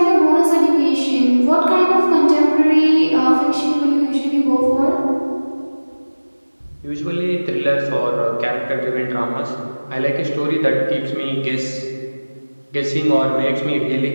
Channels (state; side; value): inverted; both; correlation -1.00